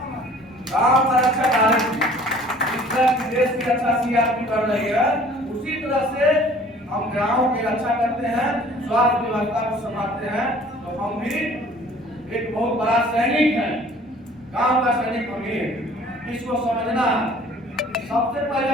गांव का रक्षक आरएमपी। इस तरह देश की रक्षा सीआरपी कर रही है, उसी तरह से हम गांव की रक्षा करते हैं, स्वास्थ्य व्यवस्था को संभालते हैं। तो हम भी एक बहुत बड़ा सैनिक है, गांव का सैनिक हम ही है, इसको समझना है। सबसे पहले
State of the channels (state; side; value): normal; both; correlation 0.51